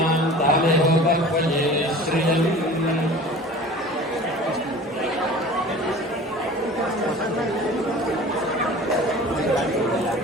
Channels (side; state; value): both; normal; correlation 0.41